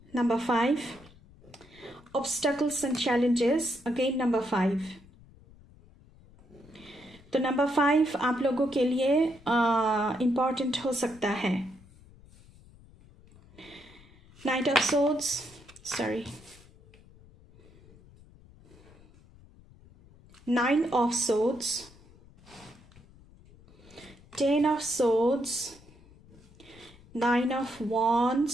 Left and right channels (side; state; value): left; noise; rumble, 24 dB below the sound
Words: Number 5. Obstacles and challenges. Again number 5. तो नंबर 5 आप लोगों के लिए इम्पॉर्टेंट हो सकता है। Knight of Swords. Sorry. 9 of Swords. 10 of Swords. 9 of